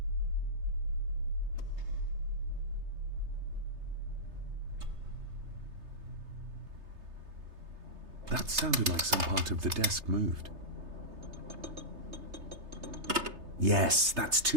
That sounded like some part of the desk moved. Yes, that's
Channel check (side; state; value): left; late; 3.3 ms